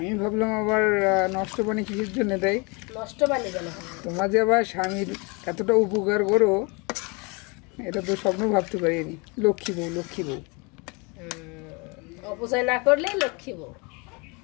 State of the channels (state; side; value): quieter; right; 30.0 dB